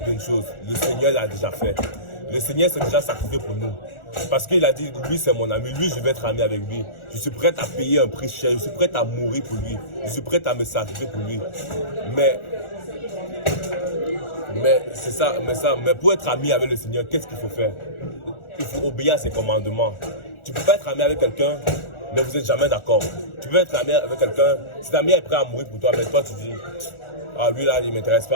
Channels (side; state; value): right; late; 1.4 ms